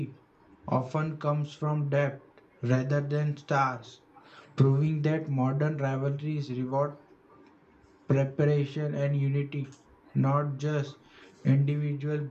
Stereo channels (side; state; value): both; identical; correlation 1.00